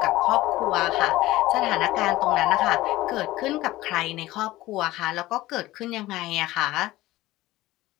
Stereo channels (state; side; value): quieter; right; 17.3 dB